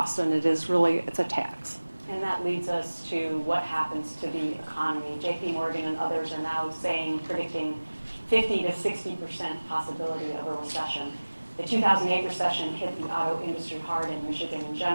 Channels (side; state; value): both; inverted; correlation -1.00